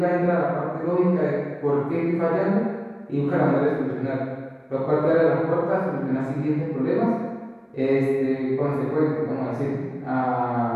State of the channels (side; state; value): both; identical; correlation 1.00